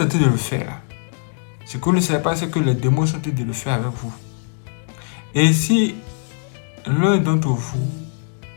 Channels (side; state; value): right; silent; 60 dB below the other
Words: train de le faire là, ce que vous ne savez pas, c'est que les démons sont en train de le faire avec vous. Et si l'un d'entre vous